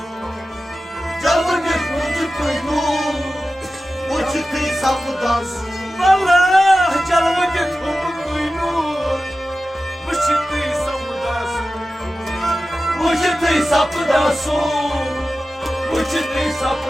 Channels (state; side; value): normal; both; correlation 0.94